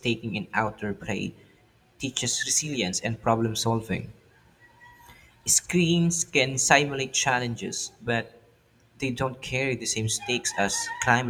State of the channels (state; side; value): identical; both; correlation 1.00